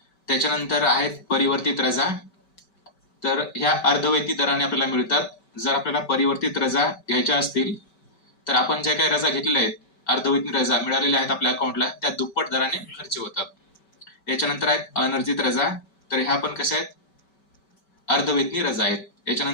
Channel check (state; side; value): late; right; 5.2 ms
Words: त्याच्यानंतर आहेत परिवर्तित रजा। तर ह्या अर्धवेतनी दराने आपल्याला मिळतात। जर आपल्याला परिवर्तित रजा घ्यायच्या असतील तर आपण ज्या काही रजा घेतलेल्या आहेत, अर्धवेतनी रजा मिळालेल्या आहेत आपल्या अकाउंटला, त्या दुप्पट दराने खर्च होतात। याच्यानंतर आहेत अनर्जित रजा। तर ह्या पण कशा आहेत? अर्धवेतनी रजा आहेत।